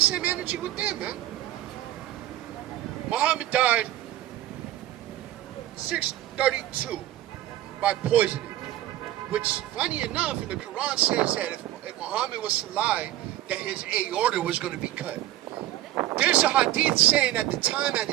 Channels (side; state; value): left; quieter; 13.9 dB